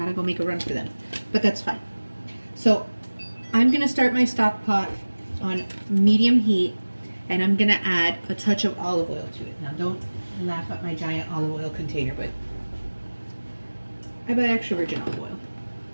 go make a run for them, but that's fine. So I'm gonna start my stock pot on medium heat, and I'm gonna add a touch of olive oil to it. Now don't laugh at my giant olive oil container, but I buy extra virgin olive oil.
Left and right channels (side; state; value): both; inverted; correlation -1.00